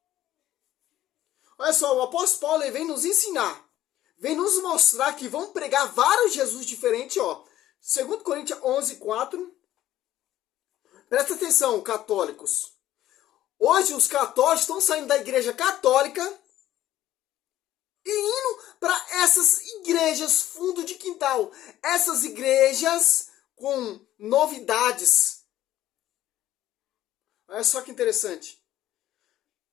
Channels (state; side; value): quieter; right; 13.5 dB